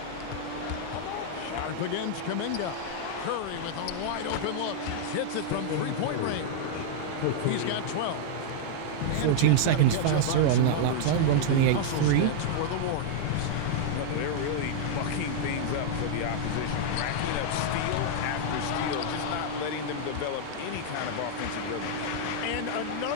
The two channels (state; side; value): different; both; correlation -0.01